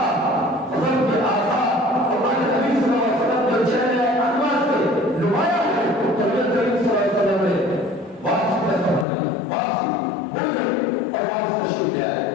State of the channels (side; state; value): right; drops out; at 9.1 s